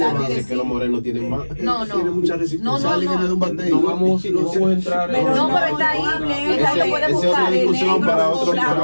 elevado. que Dice que los morenos tienen más. No, no. Tiene mucha resistencia. No, no, Charlie no. viene de un batey. No vamos a entrar Pero en no, pero está ahí, está ahí, lo puedes Esa es buscar. otra discusión para otro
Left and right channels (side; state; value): both; inverted; correlation -1.00